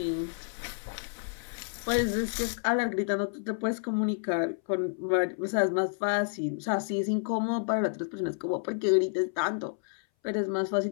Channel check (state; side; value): silent; right; 58 dB below the other